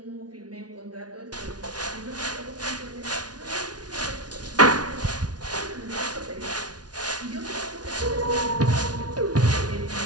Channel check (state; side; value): late; left; 0.69 ms